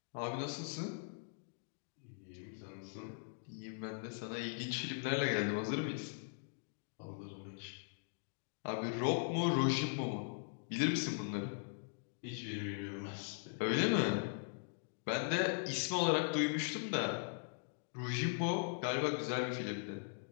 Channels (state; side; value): silent; right; digital silence